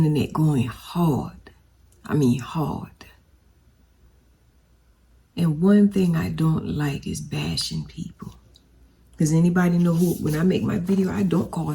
going hard. I mean hard. And one thing I don't like is bashing people. Because anybody know who, when I make my video, I don't call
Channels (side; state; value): both; identical; correlation 1.00